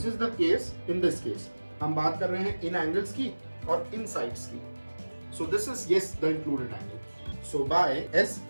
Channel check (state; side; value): inverted; both; correlation -1.00